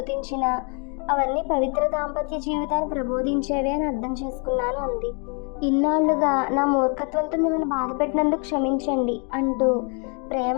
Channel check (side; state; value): right; quieter; 37.2 dB